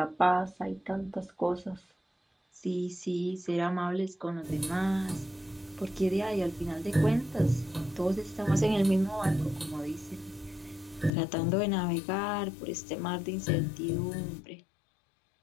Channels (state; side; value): drops out; right; at 11.1 s